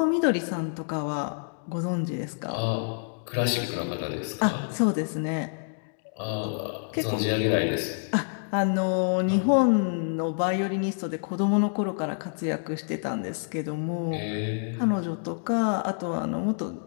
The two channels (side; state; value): right; silent; digital silence